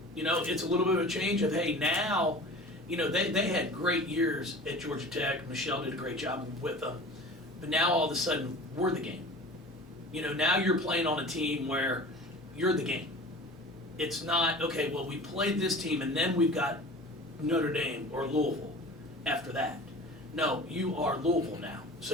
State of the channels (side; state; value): both; normal; correlation 0.39